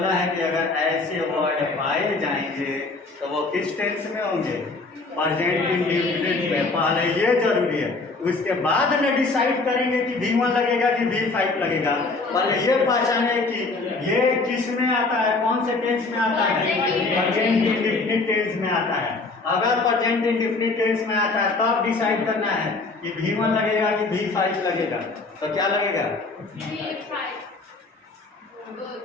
है कि अगर ऐसे वर्ड पाए जाएंगे तो वो किस टेंस में होंगे? प्रेजेंट इंडेफिनिट में। पहले ये जरूरी है, उसके बाद में डिसाइड करेंगे कि V1 लगेगा कि V5 लगेगा। पहले ये पहचाने कि ये किस में आता है, कौन से टेंस में आता है? प्रेजेंट इंडेफिनिट टेंस में आता है। अगर प्रेजेंट इंडेफिनिट टेंस में आता है तब डिसाइड करना है कि V1 लगेगा कि V5 लगेगा। तो क्या लगेगा?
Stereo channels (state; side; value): quieter; right; 3.6 dB